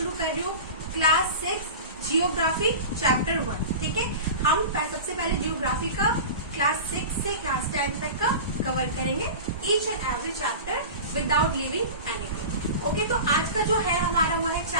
कर रही हूँ क्लास 6 जियोग्राफी चैप्टर 1, ठीक है। हम सबसे पहले जियोग्राफी का क्लास 6 से क्लास 10 तक का कवर करेंगे, each and every chapter without leaving anything. Okay, तो आज का जो है हमारा वो है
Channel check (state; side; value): inverted; both; correlation -0.31